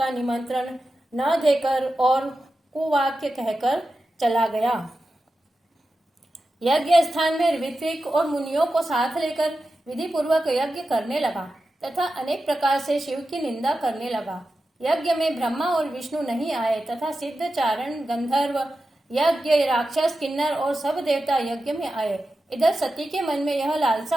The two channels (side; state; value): both; normal; correlation 0.92